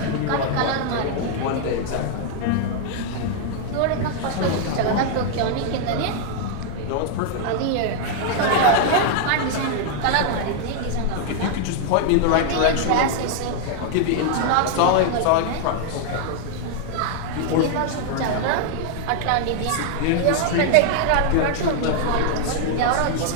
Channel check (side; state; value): both; different; correlation 0.00